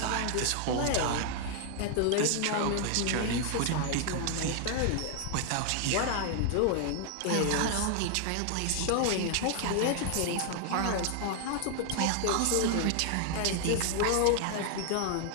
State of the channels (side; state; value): both; different; correlation 0.00